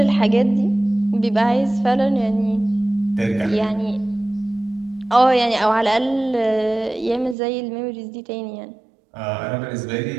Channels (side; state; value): left; drops out; at 7.4 s